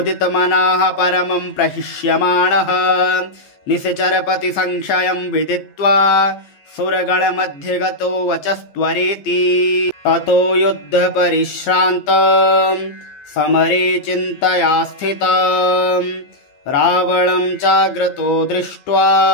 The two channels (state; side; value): late; right; 14 ms